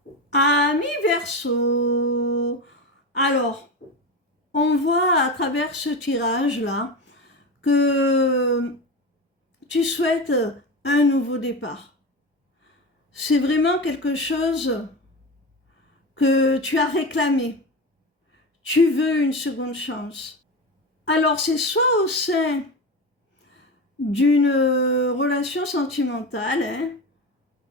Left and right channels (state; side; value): normal; both; correlation 0.23